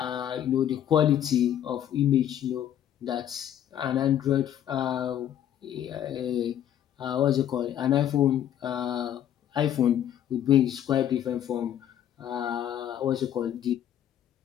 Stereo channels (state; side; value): quieter; right; 10.6 dB